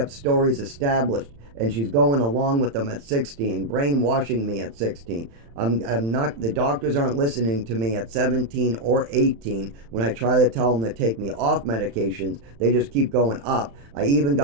stories established, and she's going along with them at 16, brainwashing me at 16. I'm not, the doctors aren't listening to me at 17 or 18 when I try to tell them to take me off medications. They just keep going up. I even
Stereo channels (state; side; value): late; left; 35 ms